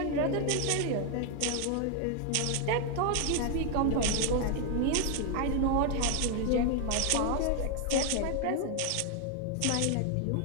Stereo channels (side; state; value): both; different; correlation 0.01